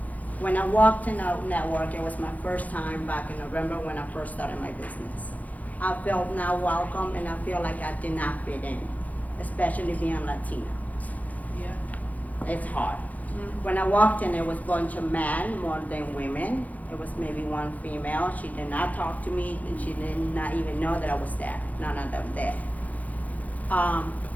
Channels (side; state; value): right; late; 0.077 ms